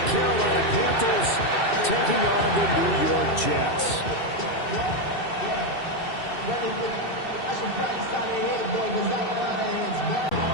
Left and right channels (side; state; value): right; late; 2.7 ms